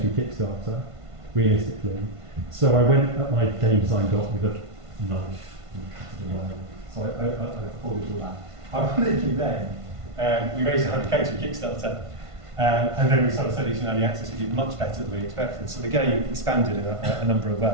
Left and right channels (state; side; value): late; left; 1.5 ms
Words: through Kickstarter, realistically. So I went at my game design doc with a knife and cut it away. So I afforded all that. Ironically then, we raised 100k through Kickstarter, and then we started studying in early access. We did much better than we expected. So the game expanded in a number of